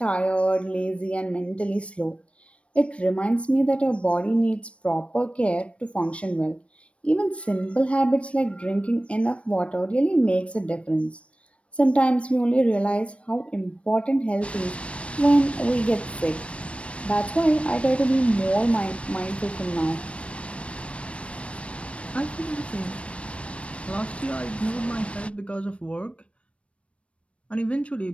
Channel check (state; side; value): late; right; 0.061 ms